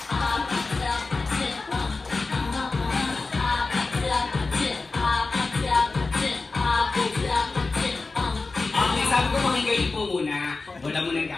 Okay, sabi ko makigayin po muna. Wala mo nang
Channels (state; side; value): quieter; right; 3.8 dB